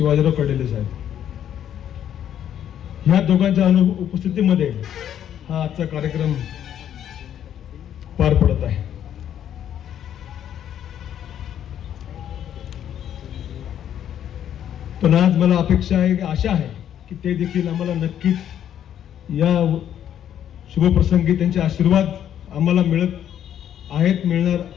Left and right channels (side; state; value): right; quieter; 10.1 dB